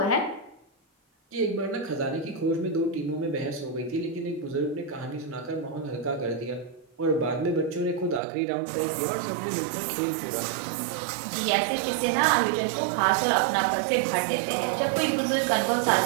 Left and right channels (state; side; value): drops out; left; at 8.2 s